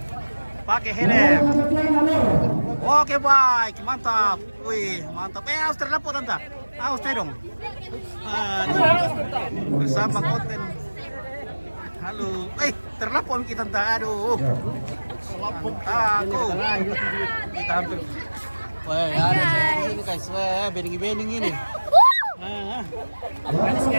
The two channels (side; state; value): both; inverted; correlation -1.00